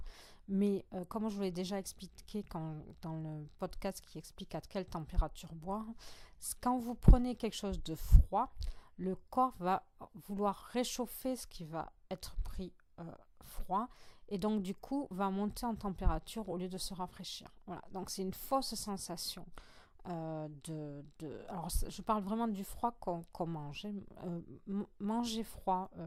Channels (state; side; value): identical; both; correlation 1.00